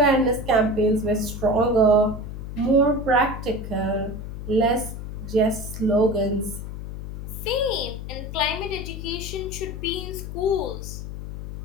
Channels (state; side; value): noise; left; hum, 8 dB below the sound